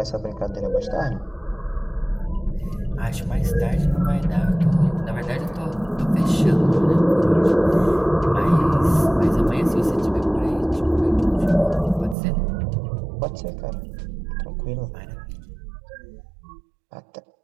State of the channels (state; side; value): drops out; left; at 12.2 s